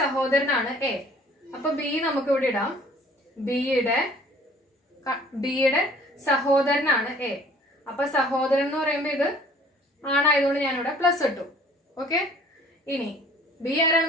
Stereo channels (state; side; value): normal; both; correlation 0.53